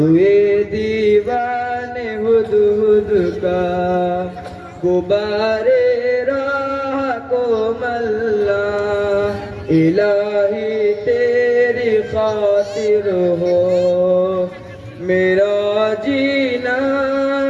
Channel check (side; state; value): both; identical; correlation 1.00